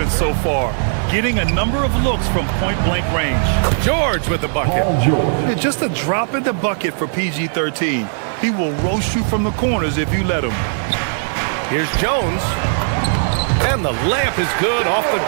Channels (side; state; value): left; silent; digital silence